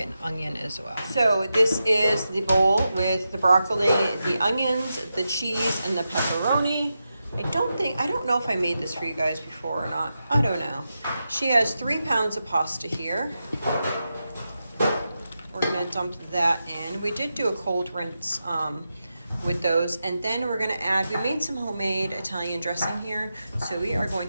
an onion as well. So this is the bowl with the broccoli, the onions, the cheese, and the pepperoni. I don't know if I made this for you guys before or not. I don't know. She has 3 pounds of pasta here. We're going to dump that in. We did do a cold rinse with those, and then we're going to add, we made some homemade Italian dressing here, so we are going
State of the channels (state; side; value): inverted; both; correlation -0.89